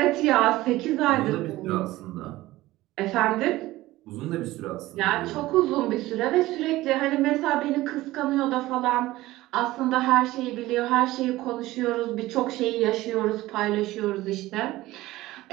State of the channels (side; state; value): left; quieter; 17.4 dB